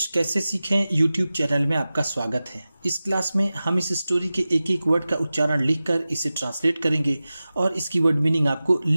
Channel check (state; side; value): inverted; both; correlation -0.96